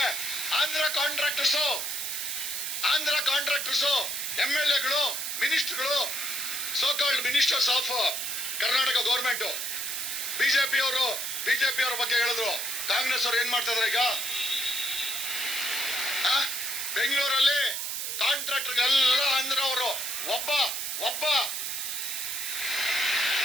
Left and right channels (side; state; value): right; noise; hiss, 3 dB below the sound